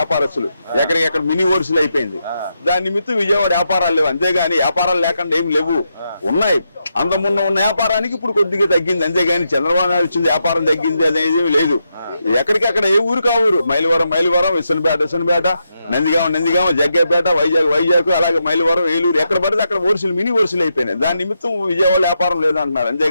ఎక్కడికెక్కడ మినీ హోల్సేల్ అయిపోయింది. దాని నిమిత్తం విజయవాడ వ్యాపారాలు లేవు. అంతేగాని వ్యాపారాలు లేకుండా ఏమి లేవు, ఉన్నాయి. అంత ముందు ఉన్న వ్యాపారానికి ఇప్పుడు కొద్దిగా తగ్గింది. అంతేగాని చంద్రబాబు నాయుడు వచ్చింది వ్యాపారం తగ్గింది అనేది లేదు. ఎక్కడికక్కడ ఏ ఊరు కా ఊరు, మైలవరం, విసనపేట, నందిగామ, జగ్గేపేట, వైజాగ్ అలాగే మైలవరం, ఏలూరు, ఎక్కడ పడితే అక్కడ హోల్సేల్ మినీ హోల్సేల్ అయిపోయినాయి. దాని నిమిత్తం విజయవాడ వ్యాపారం లేదంటున్నారు.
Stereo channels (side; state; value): both; inverted; correlation -0.84